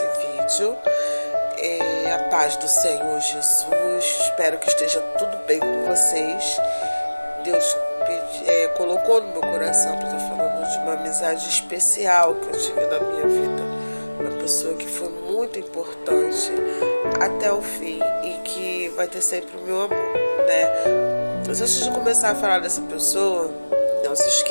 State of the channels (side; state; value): both; inverted; correlation -1.00